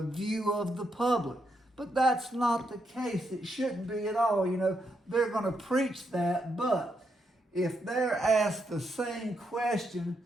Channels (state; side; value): normal; both; correlation 0.80